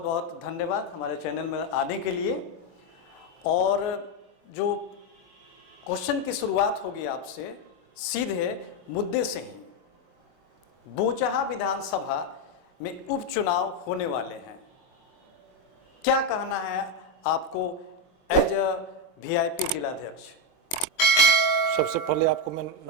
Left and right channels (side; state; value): right; late; 22 ms